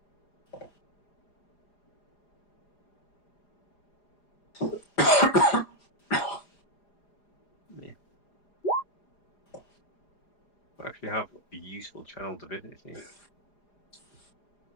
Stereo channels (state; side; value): late; right; 4.9 ms